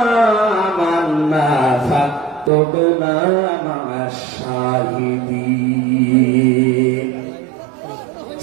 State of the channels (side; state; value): left; drops out; at 2.5 s